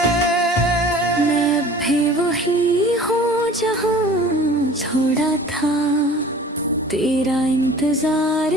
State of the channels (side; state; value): both; normal; correlation 0.45